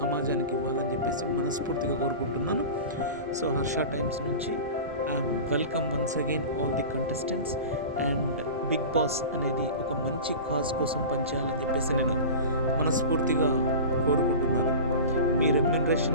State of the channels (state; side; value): inverted; both; correlation -0.33